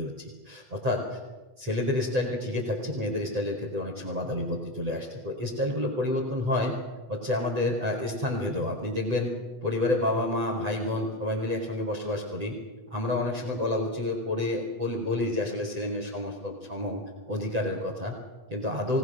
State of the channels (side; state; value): left; late; 7.8 ms